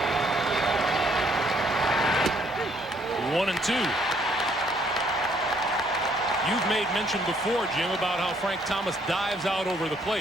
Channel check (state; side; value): normal; both; correlation 0.67